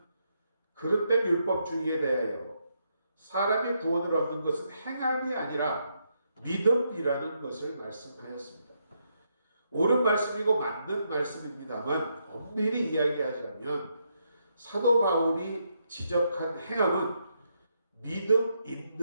그릇된 율법주의에 대하여 사람이 구원을 얻는 것은 행함이 아니라 믿음이라는 것을 말씀하였습니다. 옳은 말씀이고 맞는 말씀입니다만, 엄밀히 이야기하자면 사도 바울이 지적한 행함은 믿음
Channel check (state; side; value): inverted; both; correlation -0.79